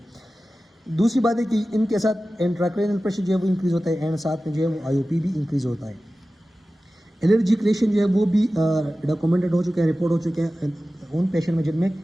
दूसरी बात है कि इनके साथ इंट्राक्रैनियल प्रेशर जो है वो इंक्रीज़ होता है एंड साथ में जो है वो IOP भी इंक्रीज़ होता है। एलर्जिक रिएक्शन जो है वो भी डॉक्यूमेंटेड हो चुके हैं, रिपोर्ट हो चुके हैं उन पेशेंट में जिनमें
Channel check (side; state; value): both; normal; correlation 0.95